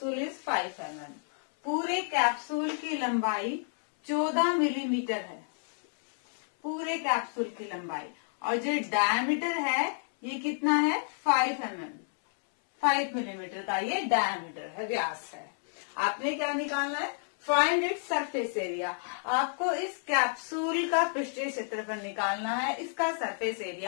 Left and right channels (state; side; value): silent; right; 58 dB below the other